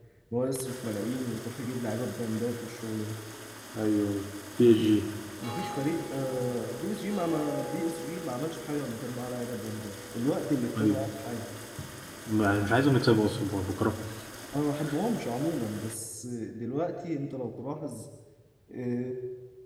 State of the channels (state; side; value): identical; both; correlation 1.00